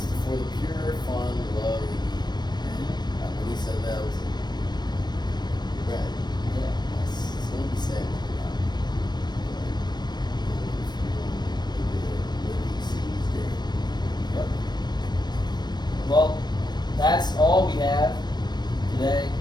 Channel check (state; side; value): late; right; 0.21 ms